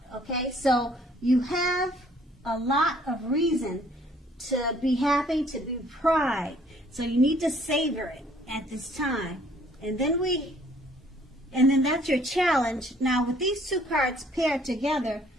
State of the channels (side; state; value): both; normal; correlation 0.60